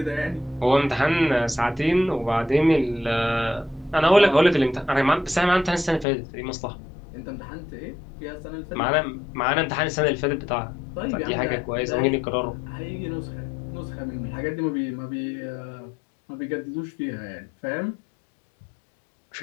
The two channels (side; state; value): right; drops out; at 6.1 s